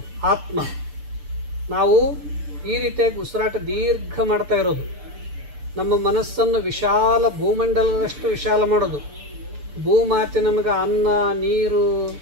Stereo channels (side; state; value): left; late; 6.8 ms